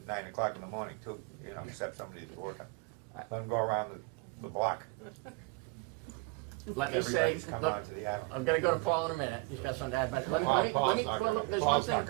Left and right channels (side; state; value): left; quieter; 27.5 dB